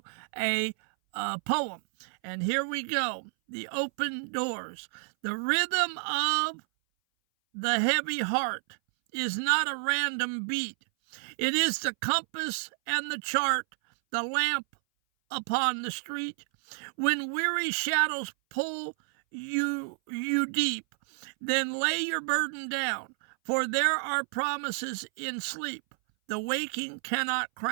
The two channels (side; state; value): left; silent; 58 dB below the other